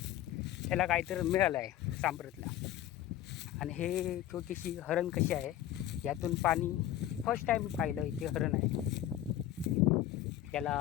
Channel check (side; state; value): right; quieter; 12.7 dB